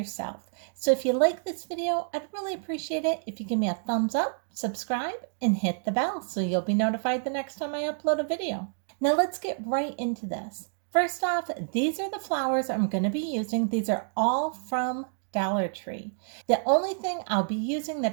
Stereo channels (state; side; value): silent; left; digital silence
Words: So if you like this video, I'd really appreciate it if you give me a thumbs up, subscribe, and hit the bell so you'll be notified the next time I upload a video. Now let's get right into this. First off, these are the flowers I'm going to be using. These are all from Dollar Tree. The only thing I'll be using